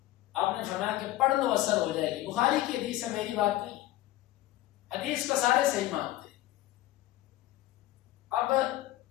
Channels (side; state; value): right; quieter; 15.7 dB